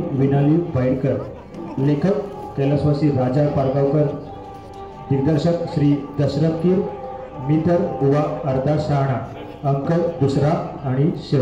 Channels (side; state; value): both; identical; correlation 1.00